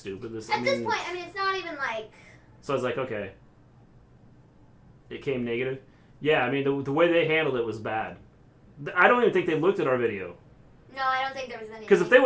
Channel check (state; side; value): identical; both; correlation 1.00